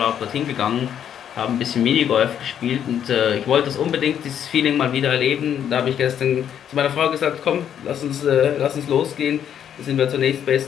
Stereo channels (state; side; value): quieter; right; 9.3 dB